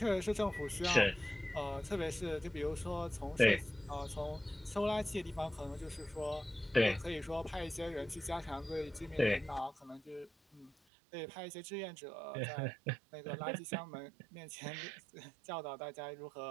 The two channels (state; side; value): drops out; left; at 10.7 s